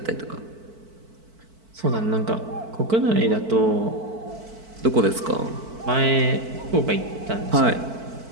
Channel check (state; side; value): late; left; 4.5 ms